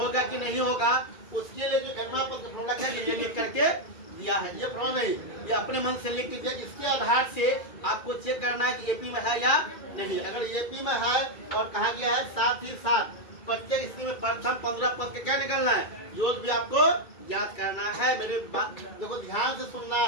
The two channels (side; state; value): right; late; 2.3 ms